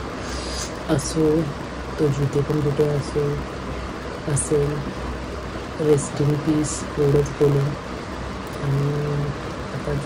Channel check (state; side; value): identical; both; correlation 1.00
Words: असो तो जिथे पण कुठे असेल रेस्ट इन पीस एवढंच बोलून. आणि आता